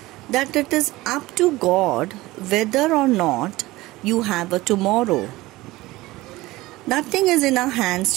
that it is up to God whether or not you have a tomorrow. Nothing is in our hands,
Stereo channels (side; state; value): left; quieter; 19.0 dB